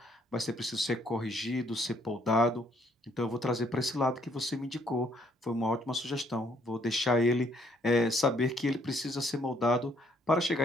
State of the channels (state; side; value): normal; both; correlation 0.67